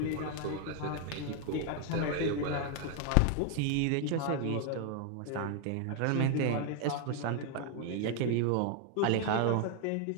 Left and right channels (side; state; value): both; different; correlation 0.00